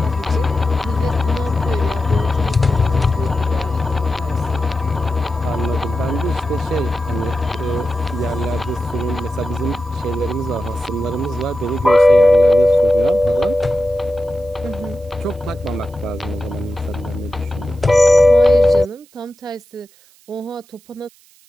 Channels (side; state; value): right; noise; hiss, 29 dB below the sound